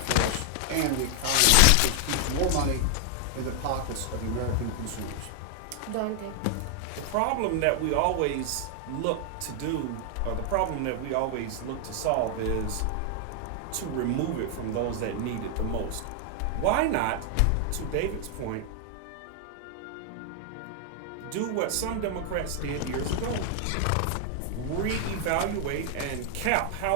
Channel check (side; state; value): both; different; correlation 0.00